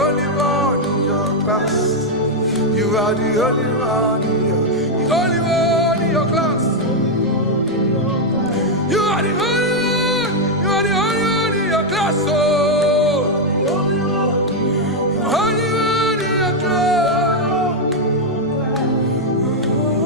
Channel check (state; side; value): noise; left; rumble, 28 dB below the sound